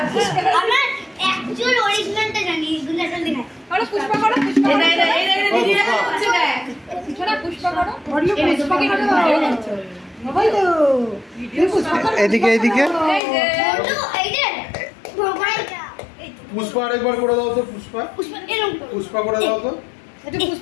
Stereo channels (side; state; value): right; drops out; at 13.2 s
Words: পুষ্পা এদিকে এদিকে পুষ্পা আরেকবার করে দাও তো। পুষ্পা পুষ্পা করে দাও তো।